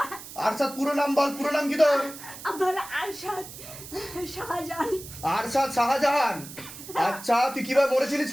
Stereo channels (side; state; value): right; noise; hiss, 14 dB below the sound